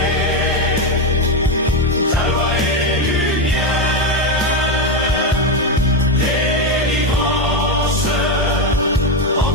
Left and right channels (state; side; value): normal; both; correlation 0.09